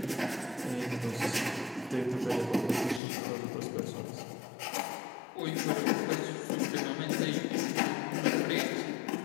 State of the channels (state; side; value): drops out; right; at 3.0 s